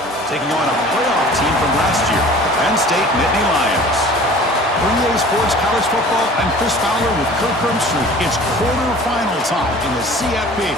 taking on a playoff team from last year, Penn State Nittany Lions. For EA Sports College Football, I'm Chris Fowler with Kirk Herbstreit. It's quarterfinal time in the CFP,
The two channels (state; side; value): normal; both; correlation 0.45